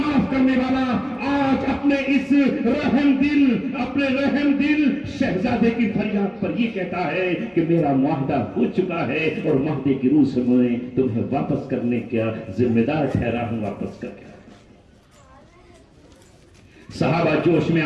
کرنے والا، آج اپنے اس اپنے رحم دل شہزادے کی فریاد پر یہ کہتا ہے کہ میرا معاہدہ ہو چکا ہے اور معاہدے کی روح سے میں تمہیں واپس کرنے کا ذمہ دار ٹھہرا ہوں، واپس کر کے۔ صحابہ جوش میں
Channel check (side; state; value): both; identical; correlation 1.00